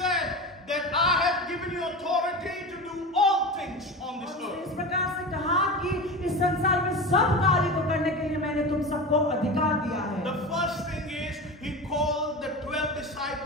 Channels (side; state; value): both; normal; correlation 0.27